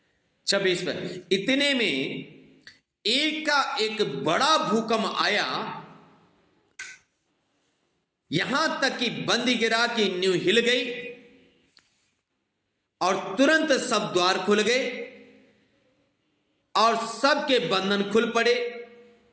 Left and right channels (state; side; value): identical; both; correlation 1.00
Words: 26 पर, इतने में एक का एक बड़ा भूकंप आया, यहां तक कि बंदीगृह की नींव हिल गई और तुरंत सब द्वार खुल गए और सबके बंधन खुल पड़े।